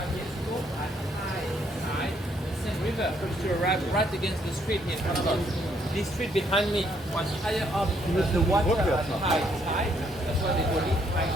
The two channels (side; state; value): both; normal; correlation 0.70